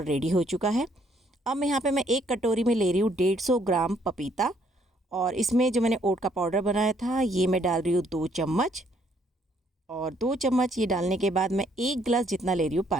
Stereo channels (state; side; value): normal; both; correlation 0.67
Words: रेडी हो चुका है। अब मैं यहाँ पे मैं एक कटोरी में ले रही हूँ 150 ग्राम पपीता, और इसमें जो मैंने ओट का पाउडर बनाया था ये मैं डाल रही हूँ 2 चम्मच। और 2 चम्मच ये डालने के बाद मैं 1 गिलास जितना ले रही हूँ